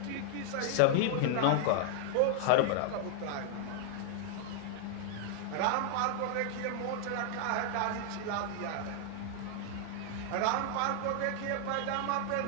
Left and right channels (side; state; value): both; different; correlation 0.00